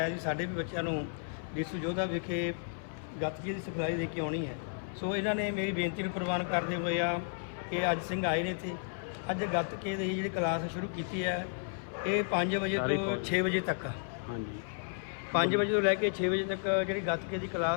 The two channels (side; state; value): right; silent; 56 dB below the other